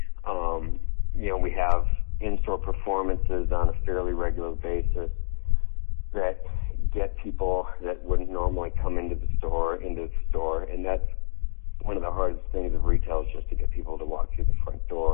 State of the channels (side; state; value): right; silent; digital silence